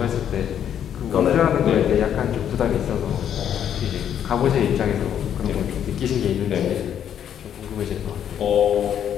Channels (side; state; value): right; quieter; 9.4 dB